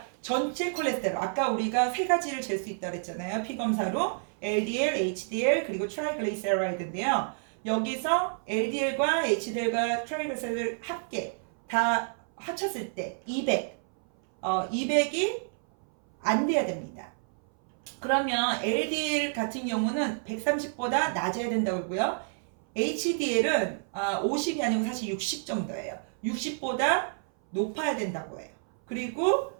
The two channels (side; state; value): left; silent; 58 dB below the other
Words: 전체 콜레스테롤 아까 우리가 3가지를 잴 수 있다고 했잖아요. 피검사로 LDL, HDL 그리고 트라이글리세라이드인데요. 여기서 LDL과 HDL과 트라이글리세라이드 합계 다 합쳤을 때 200이 안 돼야 됩니다. 그러면 LDL 같은 경우는 130보다 낮아야 된다고 하고요. HDL은 50이 아니고 사실 60 정도예요. 60보다 높아야 된다고 해요. 그리고